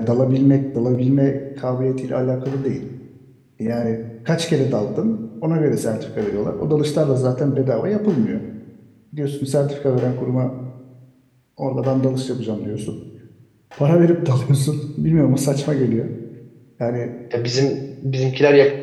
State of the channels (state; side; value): identical; both; correlation 1.00